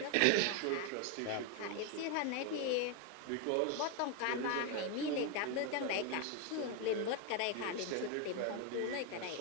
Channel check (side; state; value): both; different; correlation 0.02